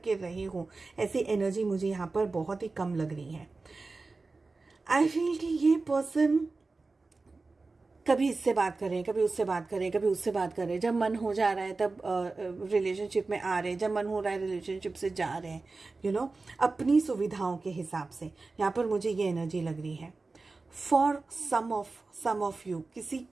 रहे हो, ऐसी एनर्जी मुझे यहाँ पर बहुत ही कम लग रही है। आई फील कि ये पर्सन कभी इससे बात करें, कभी उससे बात करें, कभी उससे बात करें, जब मन हो जा रहा है तब रिलेशनशिप में आ रहे हैं, जब मन हो रहा है रिलेशनशिप से जा रहे हैं, यू नो अपनी सुविधाओं के हिसाब से। यहाँ पर मुझे ये एनर्जी लग रही है फॉर सम ऑफ यू,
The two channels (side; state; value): left; quieter; 3.7 dB